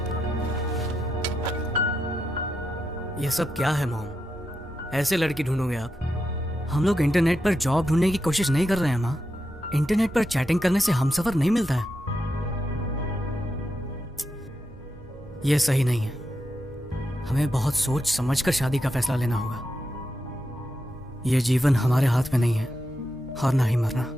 ये सब क्या है मॉम? ऐसे लड़की ढूंढोगे आप? हम लोग इंटरनेट पर जॉब ढूंढने की कोशिश नहीं कर रहे हैं माँ। इंटरनेट पर चैटिंग करने से हमसफर नहीं मिलता है। ये सही नहीं है। हमें बहुत सोच समझकर शादी का फैसला लेना होगा। ये जीवन हमारे हाथ में नहीं है, और ना ही मरना।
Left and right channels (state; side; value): normal; both; correlation 0.86